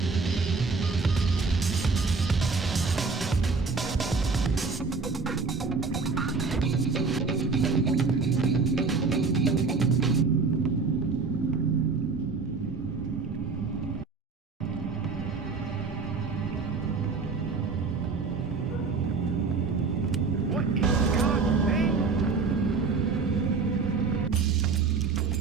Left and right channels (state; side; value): quieter; left; 4.6 dB